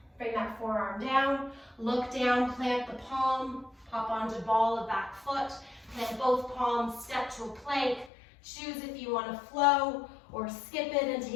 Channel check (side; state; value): right; drops out; at 8.1 s